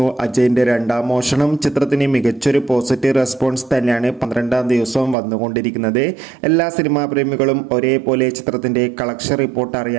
അജയൻ്റെ രണ്ടാം മോഷണം. ചിത്രത്തിന് മികച്ചൊരു പോസിറ്റീവ് റെസ്പോൺസ് തന്നെയാണ് 12-ാം ദിവസവും വന്നുകൊണ്ടിരിക്കുന്നത്. എല്ലാ സിനിമാ പ്രേമികളും ഒരേപോലെ ചിത്രത്തിൻ്റെ കളക്ഷൻ റിപ്പോർട്ട്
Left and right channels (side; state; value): left; drops out; at 5.2 s